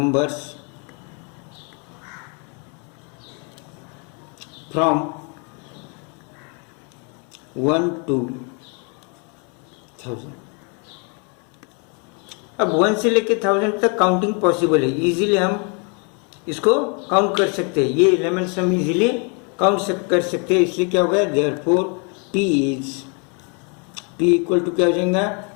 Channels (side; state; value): right; quieter; 36.1 dB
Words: from 1 to 1000। अब 1 से लेके 1000 तक काउंटिंग पॉसिबल है, इजीली हम इसको काउंट कर सकते हैं, ये एलिमेंट्स हम इजीली काउंट कर सकते हैं। इसलिए क्या होगा, देयरफॉर P इक्वल टू क्या हो जाएगा,